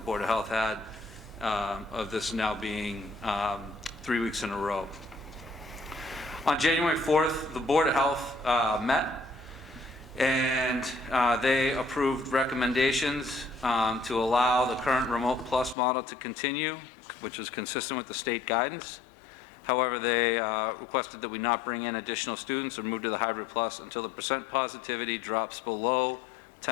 Board of Health had of this now being 3 weeks in a row. On January 4th, the Board of Health met and they approved recommendations to allow the current Remote Plus model to continue, which is consistent with the state guidance. However, they requested that we not bring in additional students or move to the Hybrid Plus until the percent positivity drops below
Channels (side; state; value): right; drops out; at 15.8 s